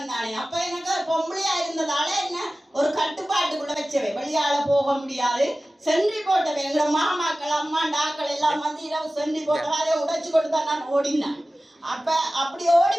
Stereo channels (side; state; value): both; normal; correlation 0.96